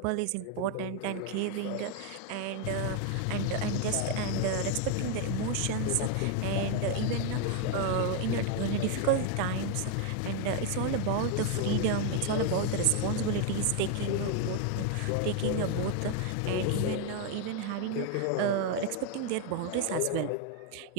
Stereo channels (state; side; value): different; both; correlation 0.01